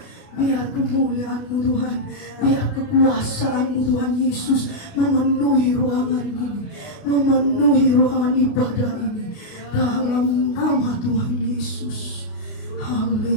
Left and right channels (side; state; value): right; late; 29 ms